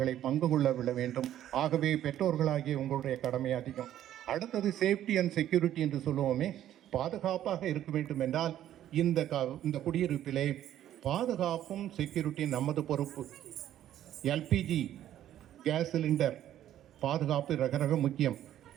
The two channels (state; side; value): quieter; left; 11.8 dB